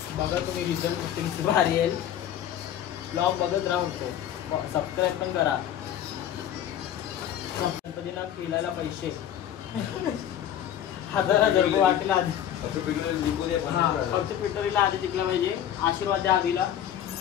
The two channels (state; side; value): quieter; right; 10.6 dB